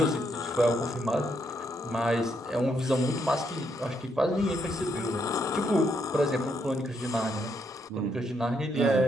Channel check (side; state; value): both; normal; correlation 0.76